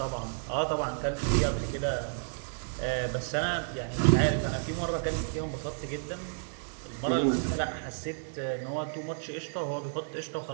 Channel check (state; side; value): silent; left; 57 dB below the other